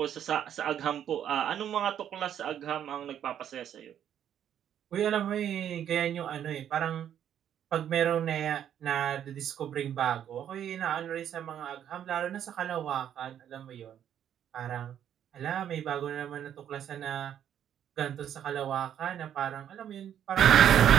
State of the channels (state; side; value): quieter; left; 9.9 dB